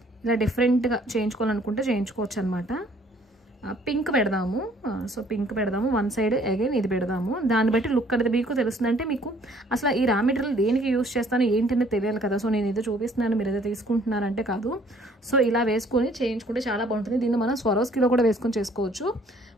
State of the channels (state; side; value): normal; both; correlation 0.59